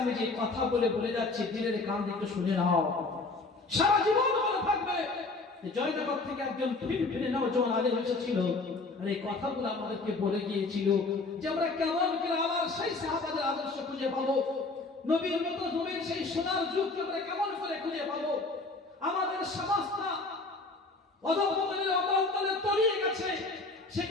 যে কথা বলে যাচ্ছি, দিনের কান থেকে শুনে নাও, সারা জীবন মনে থাকবে। জয়নগর থেকে একজন ফিরে নওজোয়ান আলেম এসেছিল, আর এই কথাগুলো আমাদেরকে বলে গিয়েছিল যে আমরা কেমন করে আবার সেই সাহাবাদের আদর্শ খুঁজে পাবো, নবীর মতো নবীর সেই সোনার যুগকে আমরা কেমন করে খুঁজে পাবো। আমাদের সমাজটা অধঃপতনের অবলম্বনে তলিয়ে গেছে,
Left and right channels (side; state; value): right; quieter; 3.5 dB